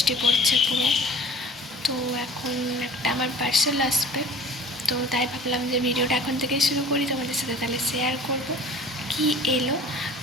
পড়ছে পুরো। তো এখন একটা আমার পার্সেল আসবে, তো তাই ভাবলাম যে ভিডিওটা এখন থেকে শুরু করি, তোমাদের সাথে তাহলে শেয়ার করব কি এলো।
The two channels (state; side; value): normal; both; correlation 0.44